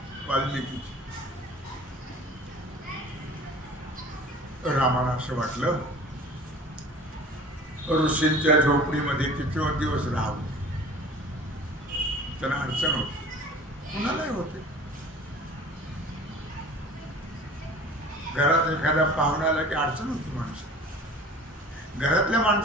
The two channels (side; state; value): both; normal; correlation 0.44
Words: वाल्मिकी रामाला असं वाटलं ऋषींच्या झोपडीमध्ये किती दिवस राहावं. त्यांना अडचण होती, कुणालाही होते. घरात एखादा पाहुणा आला की अडचण होती माणसं. घरातल्या